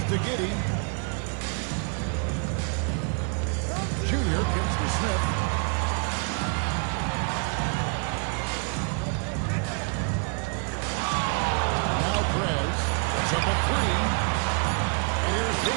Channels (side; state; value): left; quieter; 38.4 dB